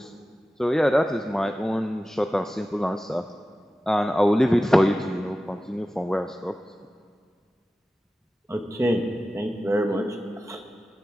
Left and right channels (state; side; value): normal; both; correlation 0.95